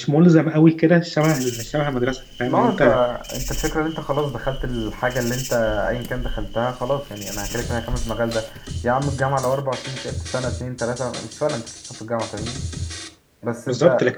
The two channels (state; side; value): identical; both; correlation 1.00